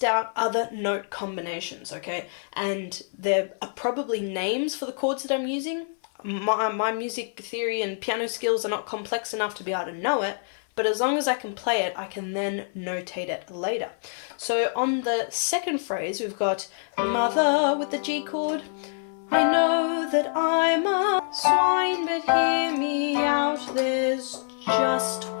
out other note combinations, okay? And there are probably names for the chords that I'm using. My music theory and piano skills are not complex enough to be able to know it, but as long as I can play it, I can then notate it later. So on the second phrase, we've got mother with the G chord. I know that I'm a swine, but hear me out, there's just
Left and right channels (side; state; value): right; silent; 61 dB below the other